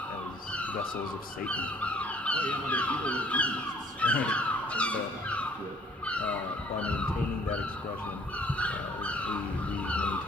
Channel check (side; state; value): both; normal; correlation 0.59